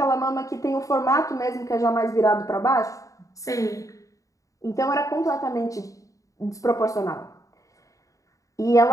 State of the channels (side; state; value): right; late; 0.16 ms